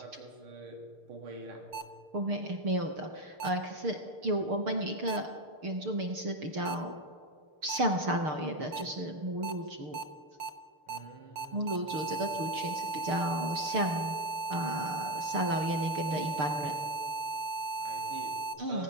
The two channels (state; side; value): late; left; 6.6 ms